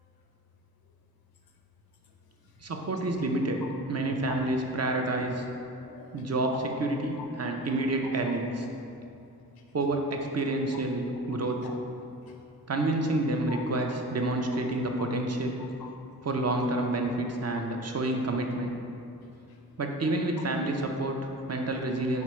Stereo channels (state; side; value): normal; both; correlation 0.36